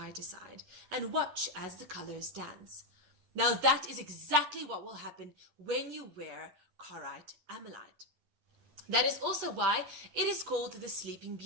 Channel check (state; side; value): late; left; 11 ms